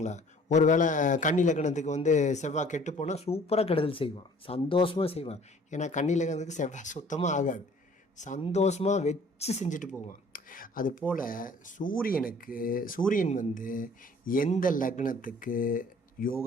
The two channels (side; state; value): both; normal; correlation 0.53